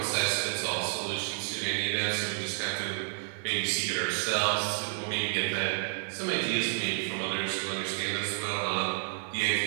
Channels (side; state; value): left; silent; digital silence